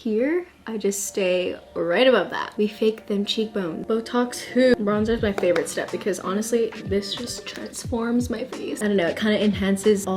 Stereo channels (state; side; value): identical; both; correlation 1.00